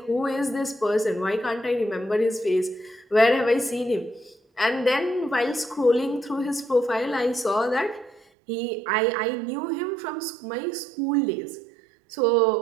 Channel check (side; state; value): left; drops out; at 8.2 s